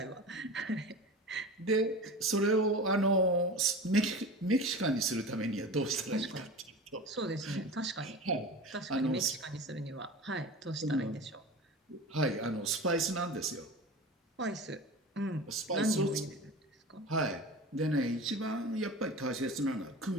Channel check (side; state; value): both; normal; correlation 0.32